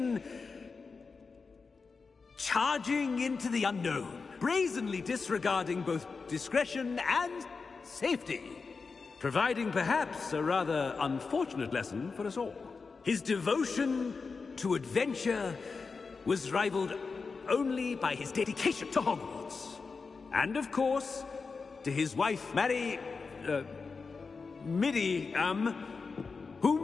charging into the unknown, brazenly disregarding both discretion and safety, providing perhaps a rather unfortunate lesson for us all. His devotion to adventure was rivaled only by his dedication to Hogwarts. And of course, to his wife, Midi,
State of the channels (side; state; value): right; quieter; 4.7 dB